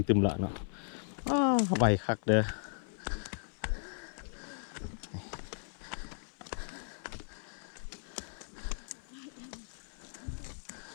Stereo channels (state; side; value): silent; right; 54 dB below the other